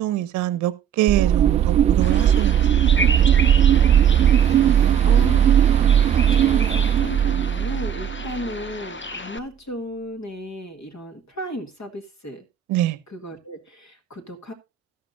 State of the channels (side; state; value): left; quieter; 9.0 dB